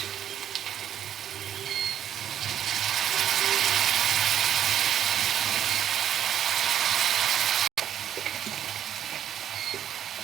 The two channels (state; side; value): quieter; left; 10.1 dB